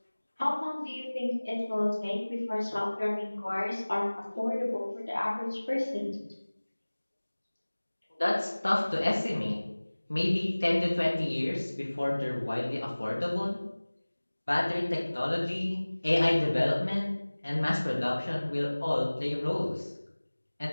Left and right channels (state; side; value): inverted; both; correlation -1.00